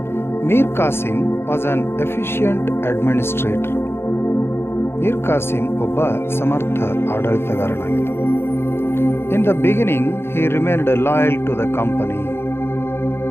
Mir Qasim was an efficient administrator. Mir Qasim ಒಬ್ಬ ಸಮರ್ಥ ಆಡಳಿತಗಾರನಾಗಿದ್ದ. In the beginning he remained loyal to the company.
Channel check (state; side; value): late; right; 0.12 ms